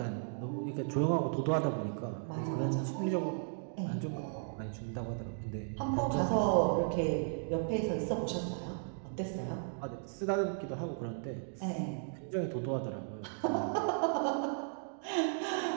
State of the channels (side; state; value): left; silent; digital silence